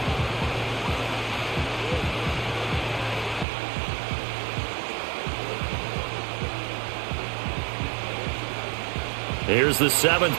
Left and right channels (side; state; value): left; drops out; at 3.5 s